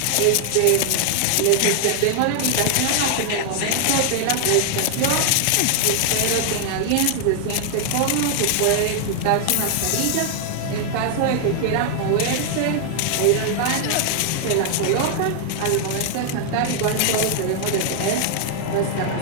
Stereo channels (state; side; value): different; both; correlation 0.00